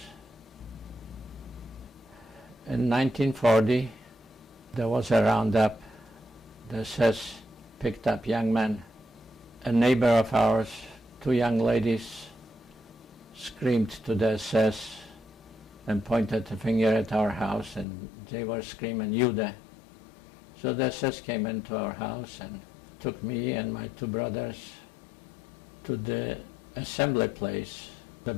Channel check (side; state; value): right; drops out; at 17.9 s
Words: In 1940, there was a roundup. The SS picked up young men. A neighbor of ours, 2 young ladies, screamed to the SS and pointed a finger at our house, and they were screaming, Jude. So the SS came into our house and took me and my 2 brothers to the assembly place, the